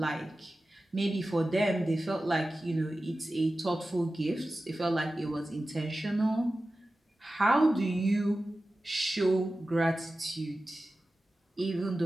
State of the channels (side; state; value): both; normal; correlation 0.94